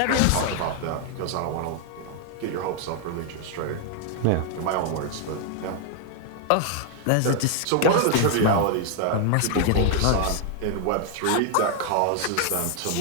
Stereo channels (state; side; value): different; both; correlation 0.00